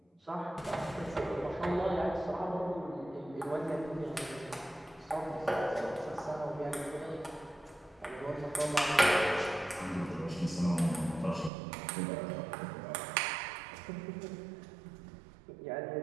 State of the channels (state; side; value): drops out; left; at 11.5 s